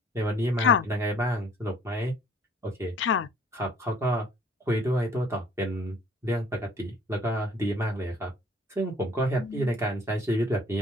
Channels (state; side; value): normal; both; correlation 0.56